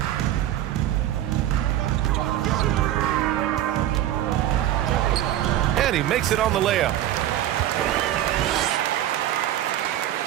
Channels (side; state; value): left; quieter; 12.6 dB